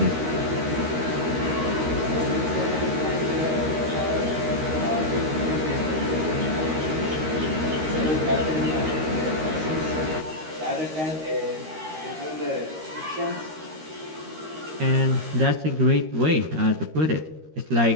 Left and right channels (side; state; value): left; late; 13 ms